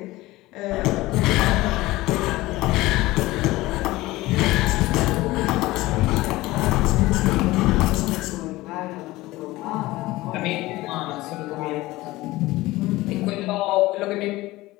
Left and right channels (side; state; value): right; quieter; 18.8 dB